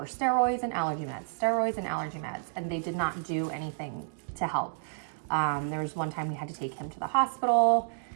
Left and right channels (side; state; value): left; silent; digital silence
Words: steroids and allergy meds, and they did not do anything to help. There was one time we had to take him to the hospital.